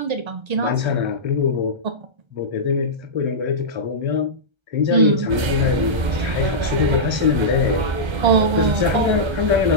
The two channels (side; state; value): left; late; 1.3 ms